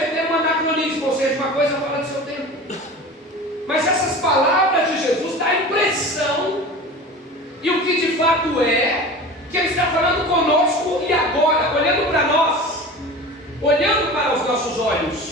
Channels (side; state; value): both; normal; correlation 0.35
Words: um anacronismo, ou seja, uma coisa fora do seu tempo. Mas essas palavras de Jesus dão a impressão, e o que de fato é, que ele está falando conosco e agora, olhando para nós, olhando para os nossos